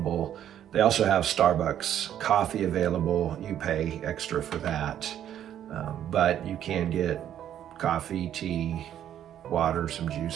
They also have Starbucks coffee available. You pay extra for that. But you can get coffee, tea, water, some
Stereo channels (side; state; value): left; quieter; 10.6 dB